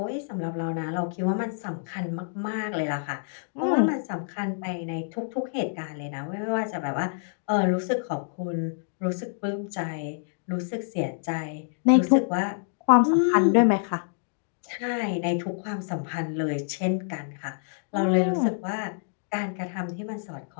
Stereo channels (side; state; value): right; silent; digital silence